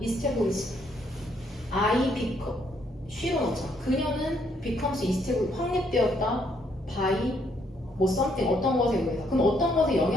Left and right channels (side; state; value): both; normal; correlation 0.71